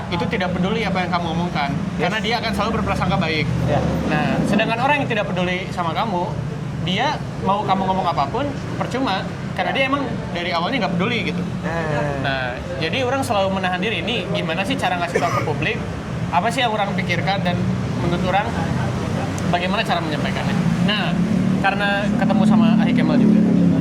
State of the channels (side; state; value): both; identical; correlation 1.00